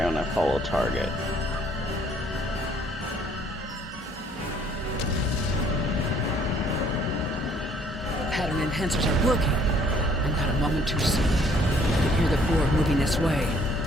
I'm gonna follow target. Pattern enhancers are working, and not a moment too soon. I can hear the Borg moving this way.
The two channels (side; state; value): both; normal; correlation 0.61